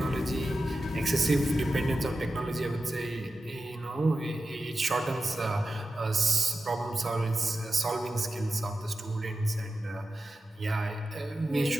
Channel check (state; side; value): normal; both; correlation 0.92